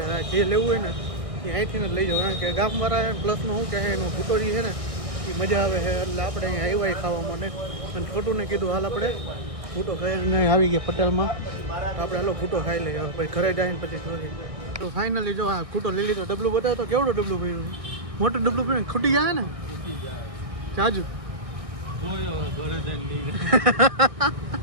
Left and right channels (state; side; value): late; left; 1.6 ms